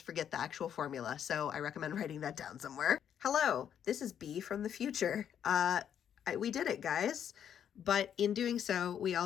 forget the actual formula. So I recommend writing that down somewhere. Hello, this is B from the future. We did it, guys. But in doing so, we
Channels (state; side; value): quieter; right; 9.0 dB